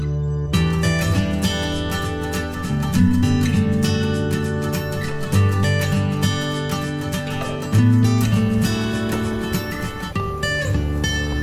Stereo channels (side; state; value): both; identical; correlation 1.00